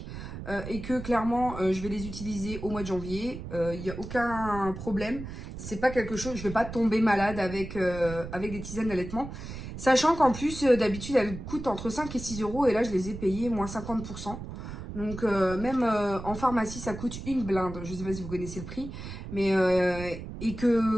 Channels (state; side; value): noise; right; rumble, 10 dB below the sound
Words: et que clairement, je vais les utiliser au mois de janvier. Il n'y a aucun problème. C'est pas quelque chose, je vais pas tomber malade avec des tisanes d'allaitement. Sachant qu'en plus, d'habitude, elles coûtent entre 5 et 6 euros. Et là, je les ai payées moins 50%. Donc, même en pharmacie, ça coûte une blinde. Je ne sais pas si vous connaissez le prix. Mais, et